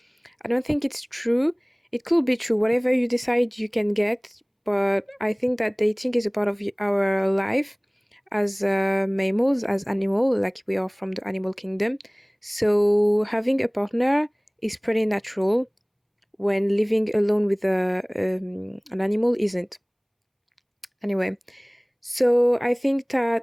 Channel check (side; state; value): both; identical; correlation 1.00